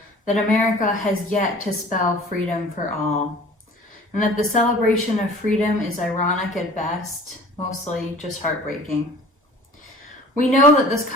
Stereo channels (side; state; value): both; normal; correlation 0.46